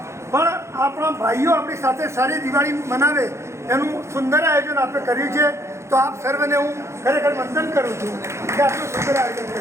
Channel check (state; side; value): late; left; 0.13 ms